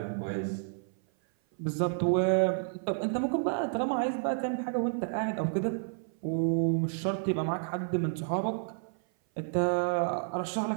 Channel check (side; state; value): left; silent; 56 dB below the other